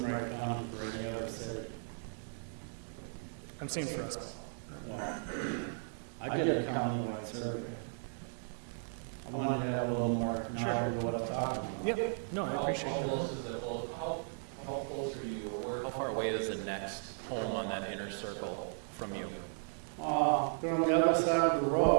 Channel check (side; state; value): left; silent; digital silence